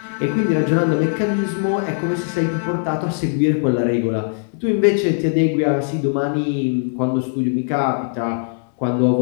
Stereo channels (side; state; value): right; silent; 64 dB below the other